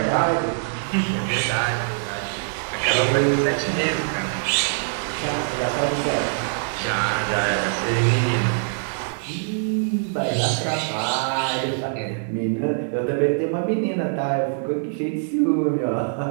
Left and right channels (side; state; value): left; silent; digital silence